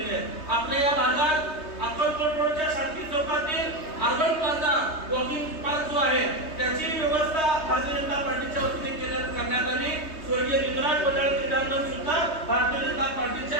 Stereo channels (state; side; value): late; right; 3.2 ms